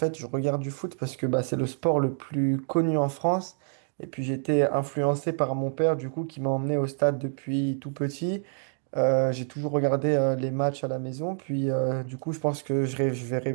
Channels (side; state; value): left; silent; 56 dB below the other